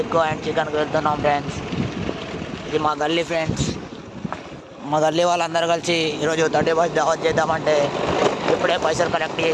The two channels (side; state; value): both; identical; correlation 1.00